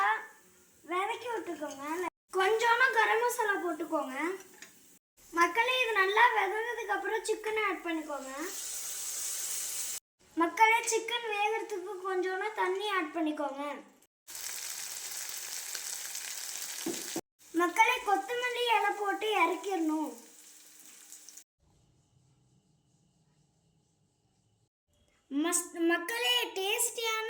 வதக்கி விட்டுக்கோங்க. கொஞ்சோண்டு கரம் மசாலா போட்டுக்கோங்க. மக்களே, இது நல்லா விதந்ததுக்கு அப்புறம் சிக்கனை ஆட் பண்ணிக்கோங்க. மக்களே, சிக்கன் வேகிறதுக்கு கொஞ்சோண்டு தண்ணி ஆட் பண்ணிக்கோங்க. மக்களே, கொத்தமல்லி இலை போட்டு இறக்கிடணும். மக்களே, டேஸ்டியான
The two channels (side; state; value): both; identical; correlation 1.00